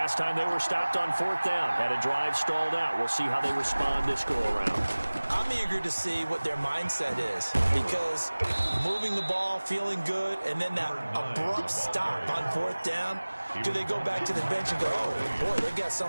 time they were stopped on 4th down, had a drive stalled out. We'll see how they respond this go-around. I'm eager to see what their mindset is, because moving the ball, feeling good, and then that abrupt stop on 4th down, do they go back to the bench and go, oh, boy, they got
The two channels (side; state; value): both; inverted; correlation -1.00